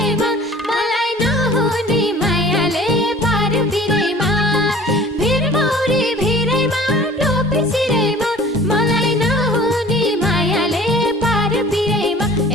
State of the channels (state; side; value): normal; both; correlation 0.47